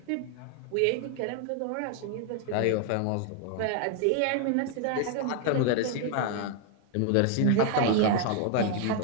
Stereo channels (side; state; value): both; different; correlation 0.00